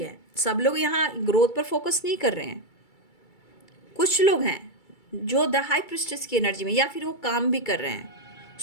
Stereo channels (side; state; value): right; late; 2.3 ms